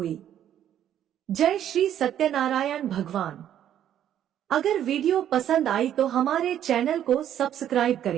जय श्री सत्यनारायण भगवान। अगर वीडियो पसंद आई तो हमारे चैनल को सब्सक्राइब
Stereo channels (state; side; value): quieter; left; 10.6 dB